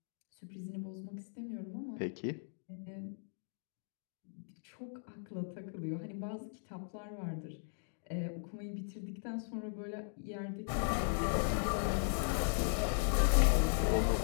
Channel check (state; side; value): silent; right; digital silence